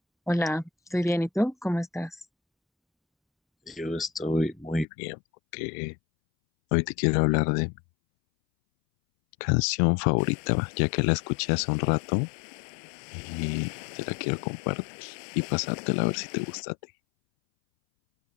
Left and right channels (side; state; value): right; drops out; at 4.9 s